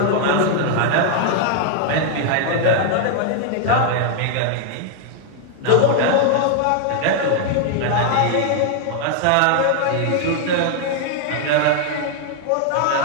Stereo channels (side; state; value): both; different; correlation 0.00